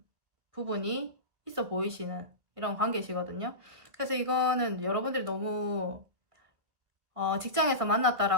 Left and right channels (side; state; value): left; late; 1.7 ms